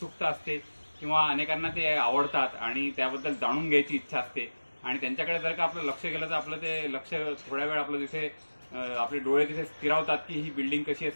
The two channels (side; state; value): both; inverted; correlation -1.00